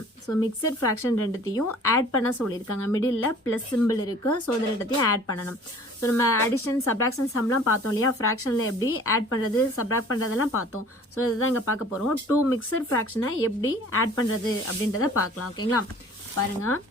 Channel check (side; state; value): both; normal; correlation 0.49